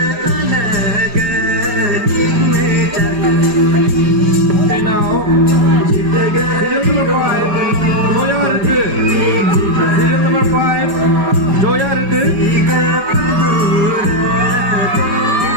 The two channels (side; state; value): left; late; 5.2 ms